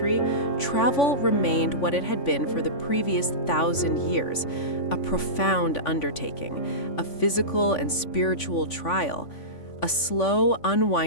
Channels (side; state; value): right; late; 3.5 ms